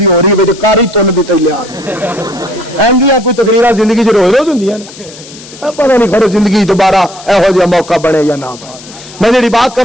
ہو رہی ہے کاری تن دی تیار ایندیاں کوئی تقریراں زندگی چ روز روز ہوندیاں نے, پتہ نہیں کھڑو زندگی دوبارہ ایہو جہا موقع بنے یا نہ بنے. میں جڑی بات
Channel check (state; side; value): noise; left; hiss, 18 dB below the sound